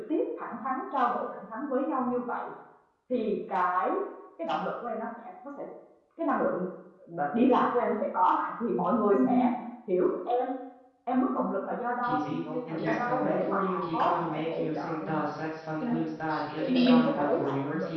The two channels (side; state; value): both; identical; correlation 1.00